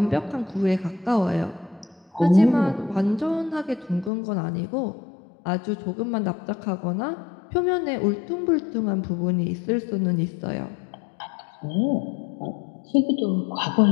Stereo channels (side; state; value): right; drops out; at 4.1 s